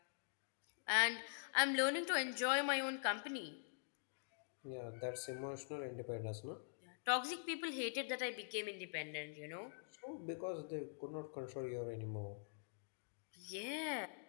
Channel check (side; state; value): right; silent; digital silence